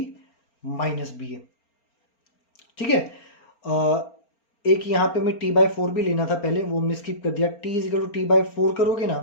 minus BA. ठीक है. एक यहां पे मैं T/4 भी लेना था पहले, वो हमने स्किप कर दिया. T is equal to T/4 करोगे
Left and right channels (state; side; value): late; right; 4.3 ms